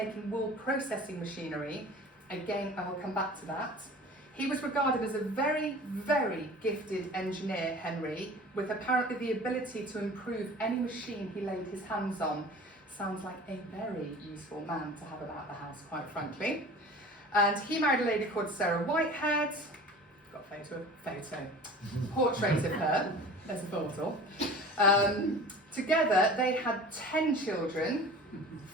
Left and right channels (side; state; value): both; normal; correlation 0.41